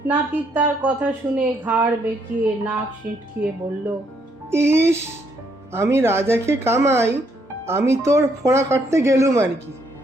নাপিত তার কথা শুনে ঘাড় বেঁকিয়ে নাক সিঁটকিয়ে বলল, ইস, আমি রাজাকে কামাই, আমি তোর ফোঁড়া কাটতে গেলুম আর কি।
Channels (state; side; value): normal; both; correlation 0.72